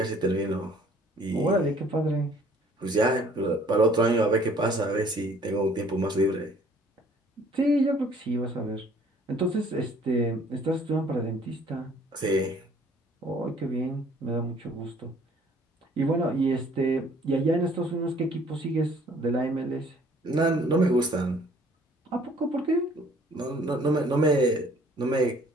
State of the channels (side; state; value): both; normal; correlation 0.57